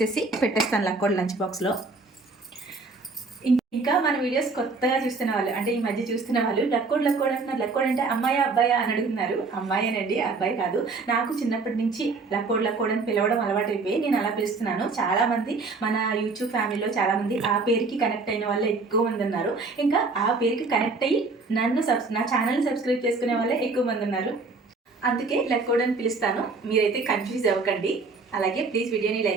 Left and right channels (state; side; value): quieter; left; 3.9 dB